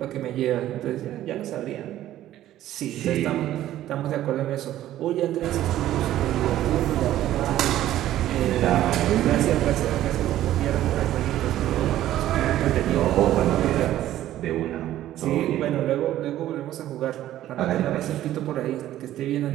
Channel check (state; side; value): quieter; left; 13.3 dB